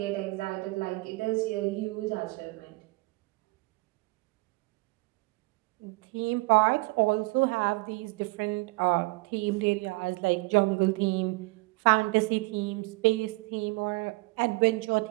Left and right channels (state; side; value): quieter; left; 24.6 dB